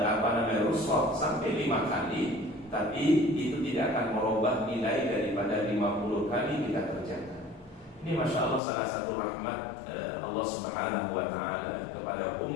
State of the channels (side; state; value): right; drops out; at 8.6 s